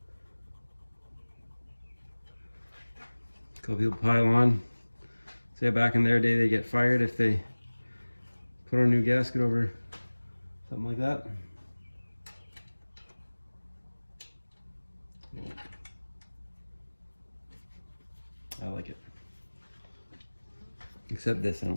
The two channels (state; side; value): inverted; both; correlation -1.00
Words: A couple people pile on. Say back in their day they get fired if they put on a new gasket over something like that. I like it. Except this, I